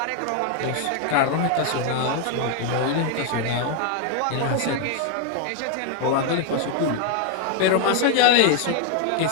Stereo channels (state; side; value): different; both; correlation 0.00